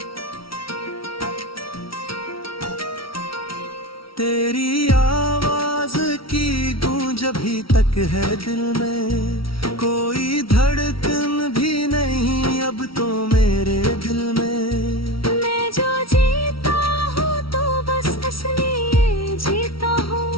तेरी आवाज की गूंज अभी तक है दिल में, कोई धड़कन भी नहीं अब तो मेरे दिल में। मैं जो जीता हूँ तो बस इसलिए जीता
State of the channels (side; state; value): right; late; 0.75 ms